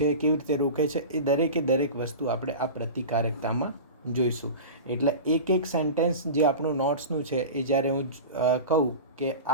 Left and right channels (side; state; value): both; inverted; correlation -0.30